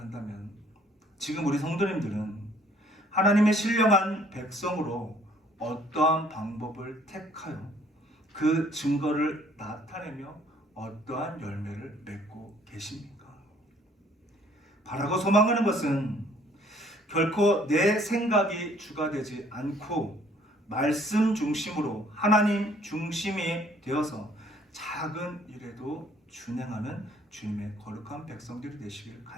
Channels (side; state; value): both; normal; correlation 0.60